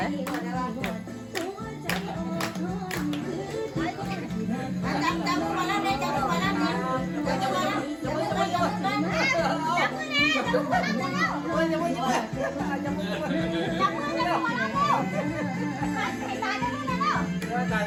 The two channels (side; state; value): both; identical; correlation 1.00